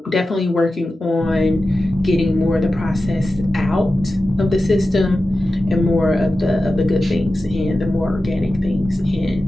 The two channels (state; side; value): normal; both; correlation 0.93